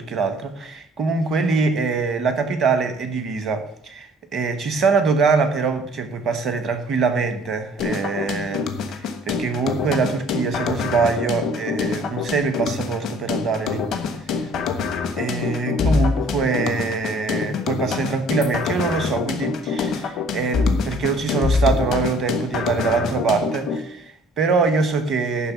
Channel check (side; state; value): both; normal; correlation 0.55